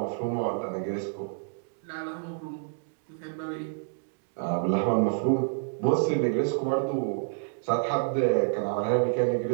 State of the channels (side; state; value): left; silent; digital silence